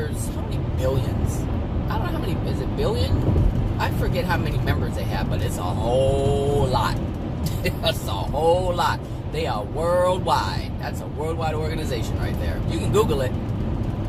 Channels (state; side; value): identical; both; correlation 1.00